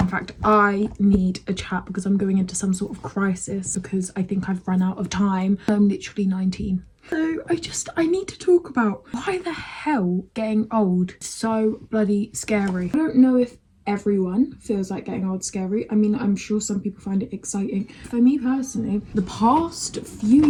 In fact, I need a chat because I'm going into some sort of crisis because I think I've run out of time. I'm literally 19. So I need to talk about why the hell getting old is so bloody scary. I don't know if everyone feels like getting old scary. I mean, I'm sure some people find it exciting. For me personally, the past few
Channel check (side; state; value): both; identical; correlation 1.00